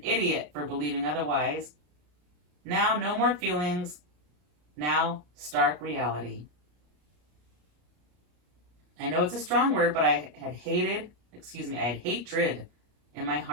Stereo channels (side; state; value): left; late; 34 ms